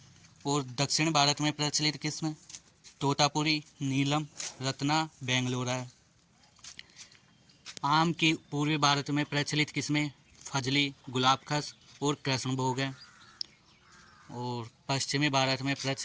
और दक्षिण भारत में प्रचलित किस्में तोतापुरी, नीलम, रत्ना, बेंगलोरा है। आम की पूर्वी भारत में प्रचलित किस्में फजली, गुलाबखस और कृष्णभोग है। और पश्चिमी भारत में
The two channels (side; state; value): both; identical; correlation 1.00